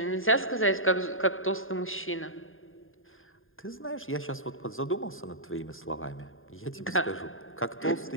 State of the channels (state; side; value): late; right; 0.59 ms